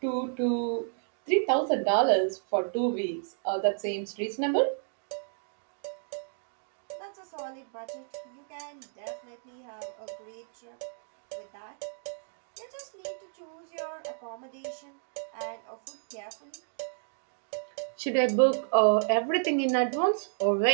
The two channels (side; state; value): left; silent; digital silence